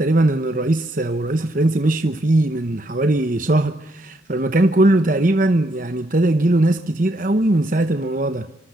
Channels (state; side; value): normal; both; correlation 0.75